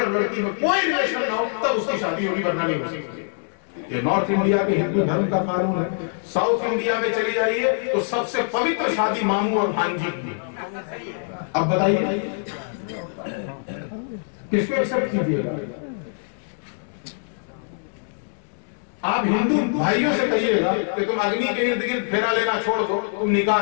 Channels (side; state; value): right; silent; 63 dB below the other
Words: لڑکی میں کوئی ریلیشن نہ ہو تب اس کی شادی ہوگی، ورنہ نہیں ہو سکتی. یہ نارتھ انڈیا کے ہندو دھرم کا قانون ہے. ساؤتھ انڈیا میں چلی جائیے تو سب سے پوتر شادی ماموں اور بھانجی کی. اب بتائیے کس کو ایکسپٹ کیجیے گا؟ آپ ہندو بھائیوں سے کہیے گا کہ تم اگنی کے ارد گرد پھیرا لینا چھوڑ دو، تم